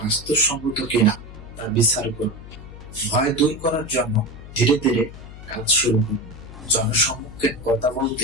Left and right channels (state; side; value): noise; left; hum, 15 dB below the sound